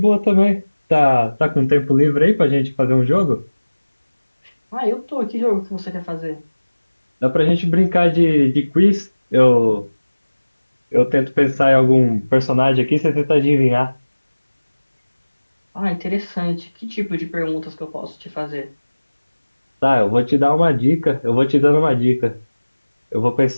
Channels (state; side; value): inverted; both; correlation -1.00